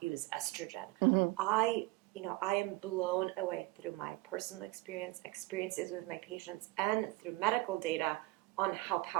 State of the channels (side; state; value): left; quieter; 20.3 dB